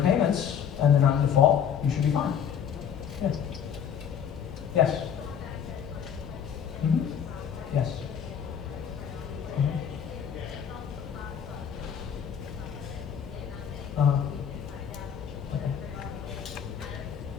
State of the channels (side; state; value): right; quieter; 8.1 dB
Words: and they're not in default, you should be fine. Yeah. Yes. Mm-hmm. Yes. Mm-hmm. Okay.